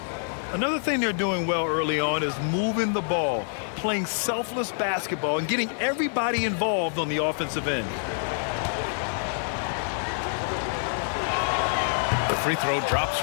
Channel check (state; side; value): silent; right; digital silence